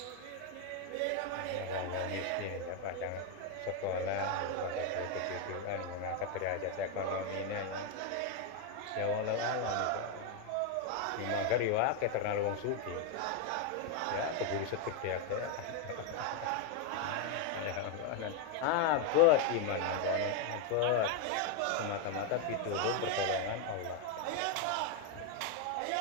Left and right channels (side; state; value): both; different; correlation 0.01